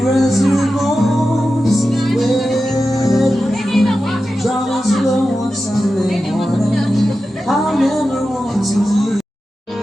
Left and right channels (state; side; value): normal; both; correlation 0.92